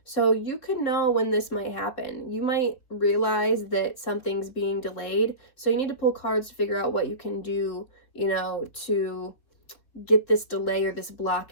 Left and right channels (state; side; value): late; right; 3.7 ms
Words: So you could know when this might happen. You might realize that something's being delayed. So you need to pull cards to figure out what you can do, to get this delay or this